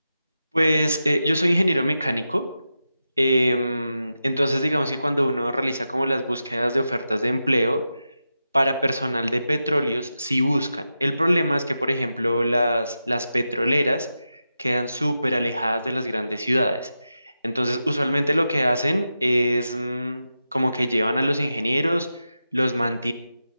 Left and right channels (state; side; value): inverted; both; correlation -0.90